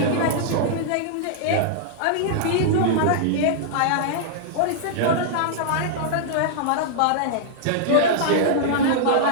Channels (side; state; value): both; different; correlation -0.01